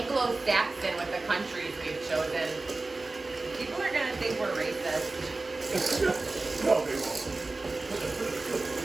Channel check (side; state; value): left; quieter; 3.3 dB